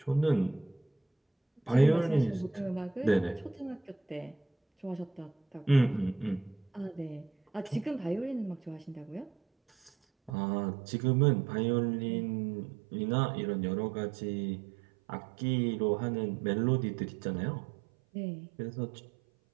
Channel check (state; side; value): drops out; left; at 10.3 s